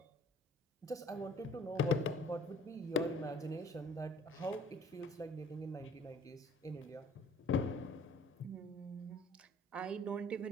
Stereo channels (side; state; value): both; normal; correlation 0.52